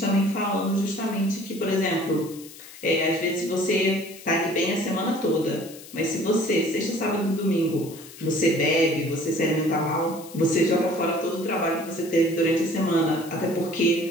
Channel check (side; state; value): left; noise; hiss, 18 dB below the sound